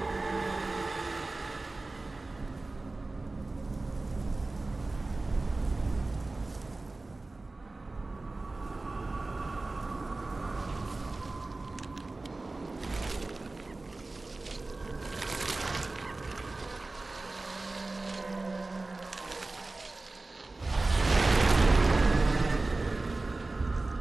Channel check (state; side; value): quieter; left; 3.2 dB